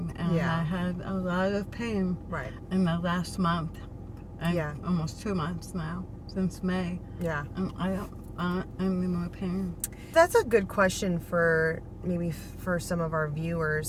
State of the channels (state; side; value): identical; both; correlation 1.00